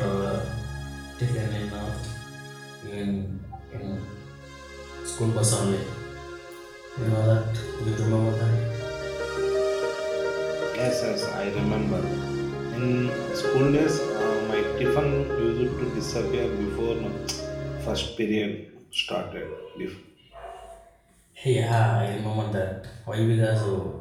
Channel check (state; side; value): identical; both; correlation 1.00